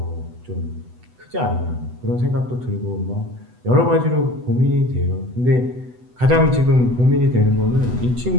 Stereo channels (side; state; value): left; late; 8.0 ms